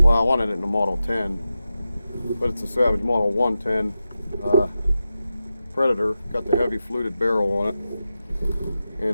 I wanted it in a Model 10, but it's a Savage Model 110 Predator. Got the heavy fluted barrel on it,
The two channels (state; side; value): inverted; both; correlation -0.91